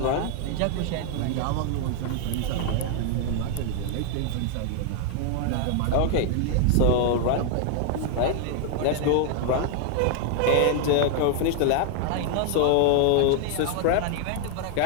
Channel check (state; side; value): different; both; correlation 0.00